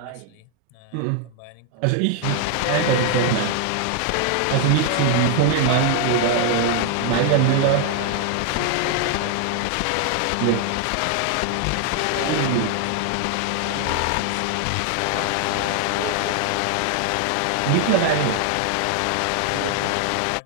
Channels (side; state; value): both; different; correlation 0.00